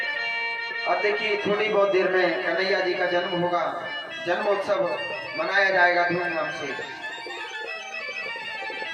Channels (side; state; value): both; identical; correlation 1.00